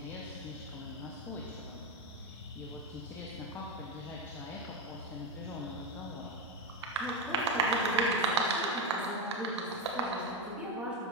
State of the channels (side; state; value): both; normal; correlation 0.14